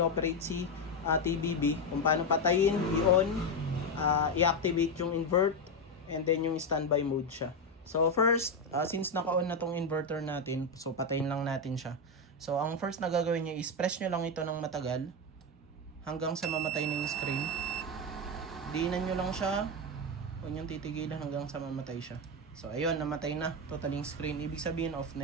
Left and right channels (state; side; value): normal; both; correlation 0.09